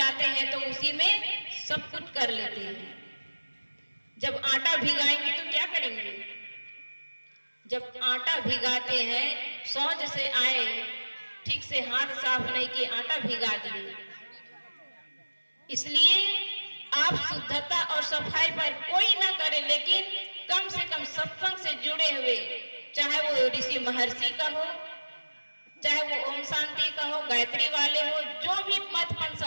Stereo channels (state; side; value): inverted; both; correlation -1.00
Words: हैं तो उसी में सब कुछ कर लेते हैं। जब आटा भिगाएंगे तो क्या करेंगे? जब आटा भिगाते हैं, सोच से आए, ठीक से हाथ साफ नहीं किए, आटा भिगा दिए। इसलिए आप शुद्धता और सफाई पर कोई ना करे, लेकिन कम से कम सत्संग से जुड़े हुए, चाहे वो ऋषि महर्षि का हो, चाहे वो ओम शांति का हो, गायत्री वाले हो, जो भी मत पंथ